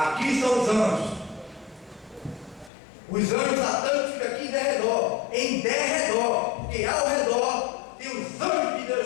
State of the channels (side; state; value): right; drops out; at 2.7 s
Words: são os anjos. Os anjos satânicos ficam aqui em derredor. Em derredor. Porque ao redor tem os anjos de